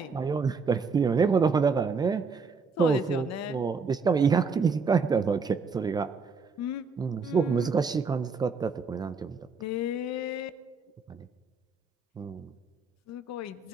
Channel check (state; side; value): quieter; left; 4.5 dB